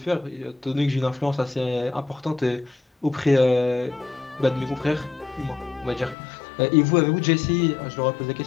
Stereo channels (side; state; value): right; drops out; at 6.2 s